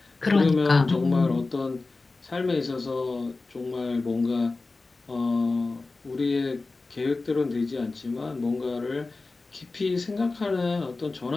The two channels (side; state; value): right; quieter; 3.6 dB